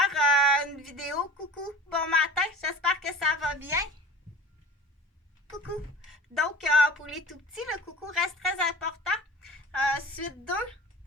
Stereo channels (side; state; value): both; normal; correlation 0.39